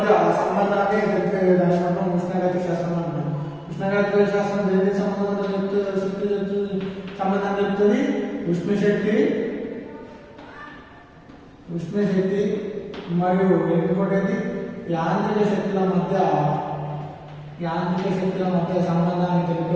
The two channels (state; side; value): identical; both; correlation 1.00